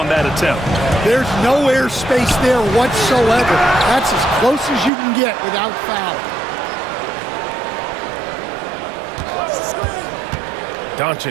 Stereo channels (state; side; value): drops out; left; at 4.9 s